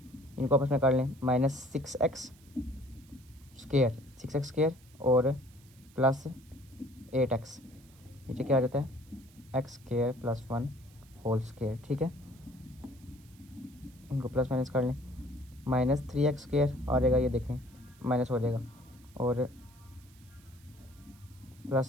इनको आपस में कर लें माइनस 6x स्क्वायर और प्लस 8x, नीचे क्या आ जाता है x square plus 1 whole square, ठीक है। इनको प्लस माइनस कर लें, माइनस 3x स्क्वायर आ जाएगा, ये देखें माइनस हो जाएगा, और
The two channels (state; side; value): noise; right; hiss, 27 dB below the sound